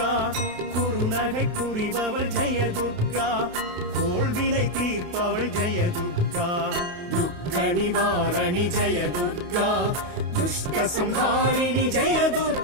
குறுநகை புரிபவள் ஜெய துர்கா கோள்வினை தீர்ப்பவள் ஜெய துர்கா துக்க நிவாரணி ஜெய துர்கா துஷ்ட சம்ஹாரிணி ஜெய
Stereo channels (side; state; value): left; late; 28 ms